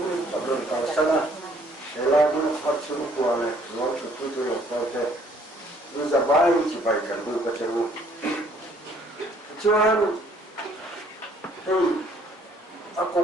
tập đoàn cả sana để là những phát triển của này nó chủ yếu là có thể như là bài chỉ bài cần được cái chỗ cho nên thì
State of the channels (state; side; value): normal; both; correlation 0.61